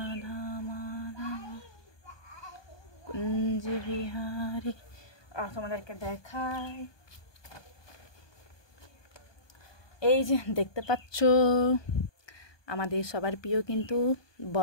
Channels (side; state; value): right; late; 1.2 ms